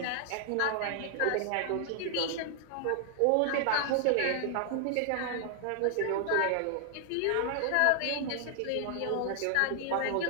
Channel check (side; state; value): both; different; correlation 0.00